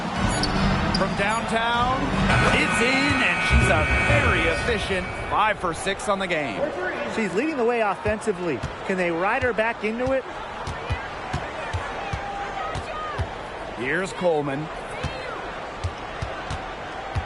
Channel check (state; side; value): identical; both; correlation 1.00